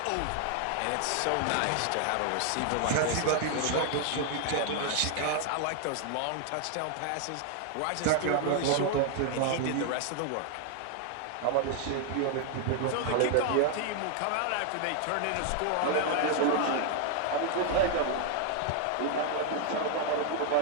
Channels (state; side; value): different; both; correlation 0.00